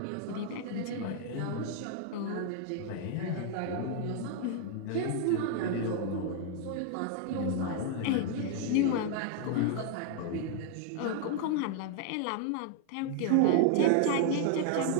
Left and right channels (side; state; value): both; different; correlation 0.00